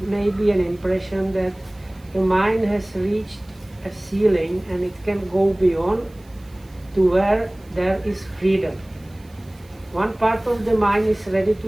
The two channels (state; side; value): noise; right; hiss, 29 dB below the sound